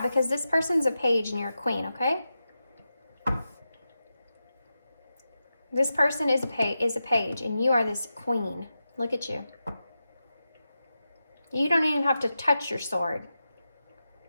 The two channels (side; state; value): both; inverted; correlation -0.91